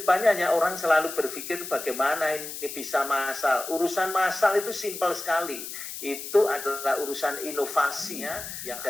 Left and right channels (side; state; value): left; noise; hiss, 9 dB below the sound